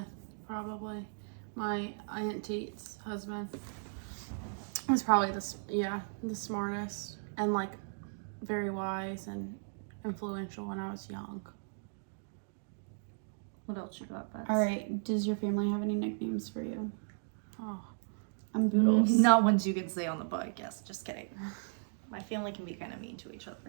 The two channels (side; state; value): left; silent; digital silence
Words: probably. My Aunt Teet's husband was probably the smartest and like very wise and influential when I was young. what else you got, Bets? All right. Does your family have any nicknames for you? Oh, I'm Boodles. Not ones you can say on the podcast. Just kidding. My family can be kind of mean to each other.